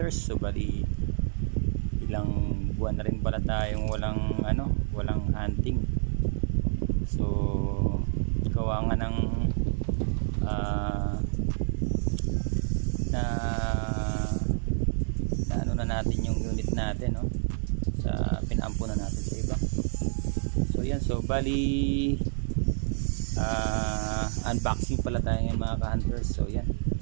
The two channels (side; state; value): left; silent; digital silence